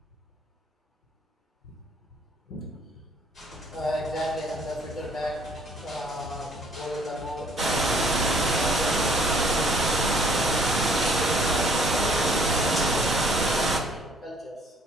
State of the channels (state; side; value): normal; both; correlation 0.61